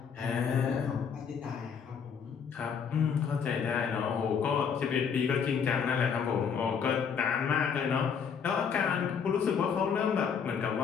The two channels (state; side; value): quieter; right; 6.8 dB